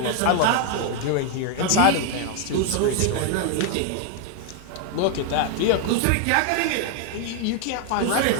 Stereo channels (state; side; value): different; both; correlation 0.00